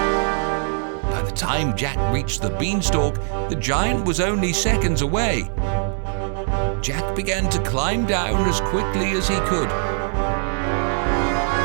By the time Jack reached the beanstalk, the giant was only seconds away. Jack began to climb down as quickly as he could.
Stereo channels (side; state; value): left; silent; 59 dB below the other